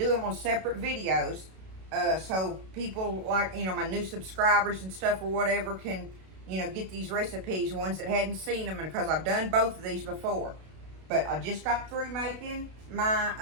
them on separate videos. So people like, my new subscribers and stuff or whatever can, get these recipes. Ones that hadn't seen them. Because I've done both of these before. But I just got through making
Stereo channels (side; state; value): left; late; 32 ms